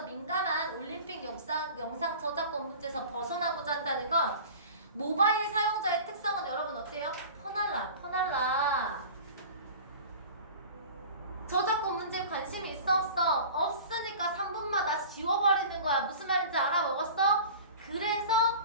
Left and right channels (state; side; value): inverted; both; correlation -0.39